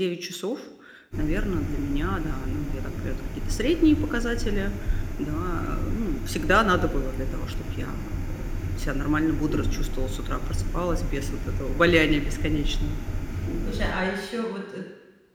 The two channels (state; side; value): identical; both; correlation 1.00